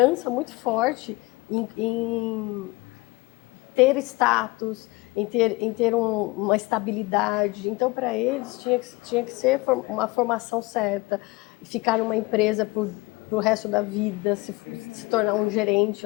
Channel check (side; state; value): right; quieter; 23.2 dB